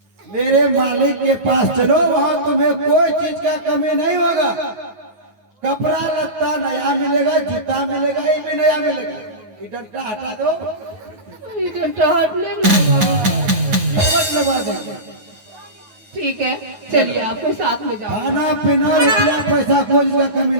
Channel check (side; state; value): left; late; 9.4 ms